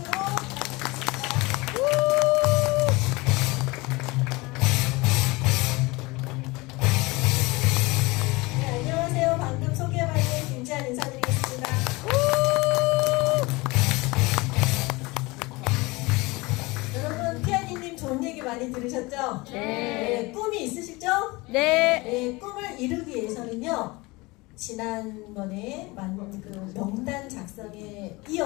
네, 안녕하세요. 방금 소개받은 김지한 인사드리겠습니다. 여러분, 피아니님 좋은 얘기 많이 들으셨죠? 네. 꿈이 있으시죠? 네. 꿈을 이루기 위해서는요, 지난번에 그 명단 작성에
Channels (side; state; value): right; quieter; 23.5 dB